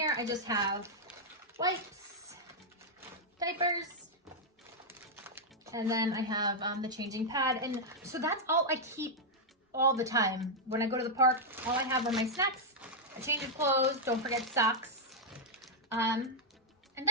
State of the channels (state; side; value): normal; both; correlation -0.03